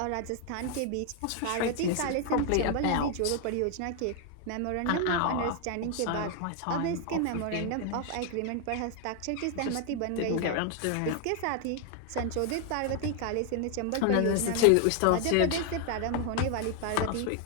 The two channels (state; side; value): different; both; correlation 0.00